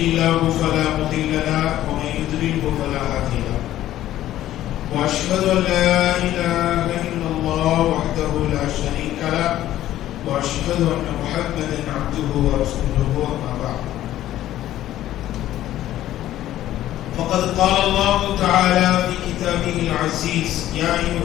الله فلا مضل له ومن يضلله فلا هادي له وأشهد أن لا إله إلا الله وحده لا شريك له وأشهد أن محمدا عبده ورسوله أما بعد فقد قال الله تعالى في كتابه العزيز يا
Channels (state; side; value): quieter; right; 13.4 dB